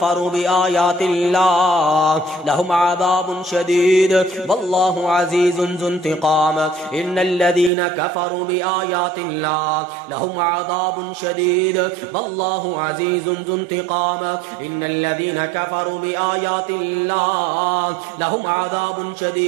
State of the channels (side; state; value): left; drops out; at 7.7 s